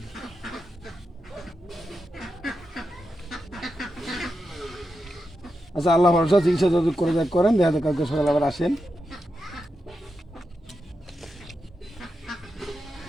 আচ্ছা আল্লাহ ভরসা, চিকিৎসা যত করে যাক করেন, দেখা যাক কালকে সকালে আবার আসেন।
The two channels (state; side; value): normal; both; correlation 0.88